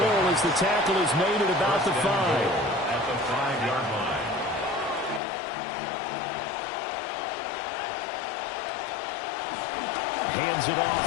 as the tackle is made at about the 5. At the 5-yard line. Hands it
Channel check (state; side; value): drops out; right; at 5.2 s